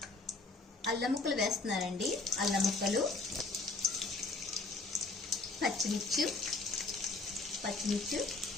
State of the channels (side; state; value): right; quieter; 3.5 dB